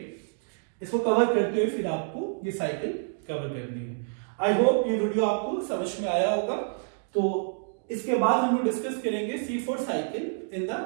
इसको कवर करते हुए फिर आपको ये साइकिल कवर करनी है। आई होप ये वीडियो आपको समझ में आया होगा। तो इसके बाद हम लोग डिस्कस करेंगे C4 cycle in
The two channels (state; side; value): silent; left; digital silence